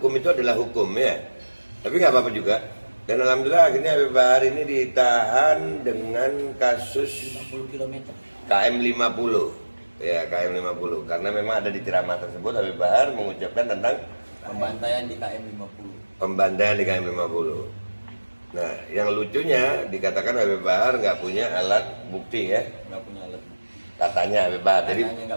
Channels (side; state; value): both; inverted; correlation -1.00